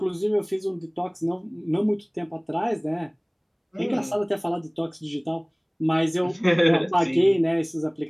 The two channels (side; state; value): both; identical; correlation 1.00